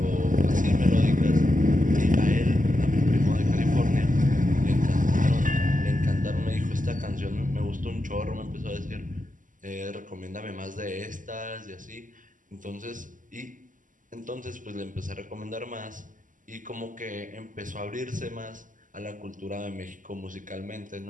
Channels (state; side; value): late; left; 0.38 ms